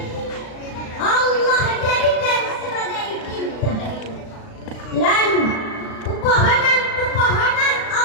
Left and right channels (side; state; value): right; late; 36 ms